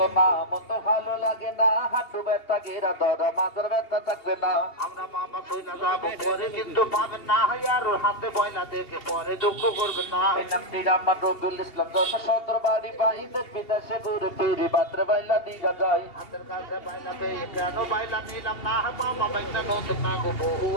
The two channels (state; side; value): late; right; 2.8 ms